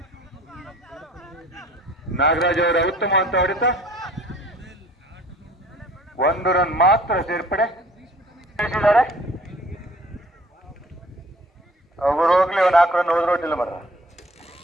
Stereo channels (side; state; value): both; normal; correlation 0.52